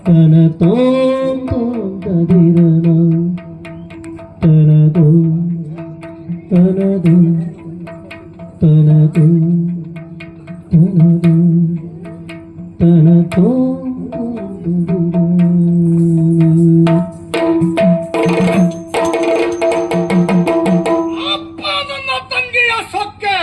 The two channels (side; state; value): both; identical; correlation 1.00